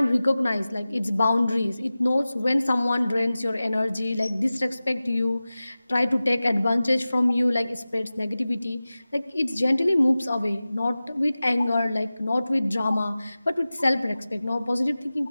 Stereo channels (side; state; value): both; inverted; correlation -0.96